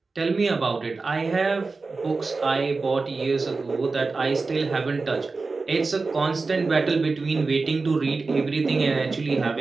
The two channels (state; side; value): quieter; left; 4.0 dB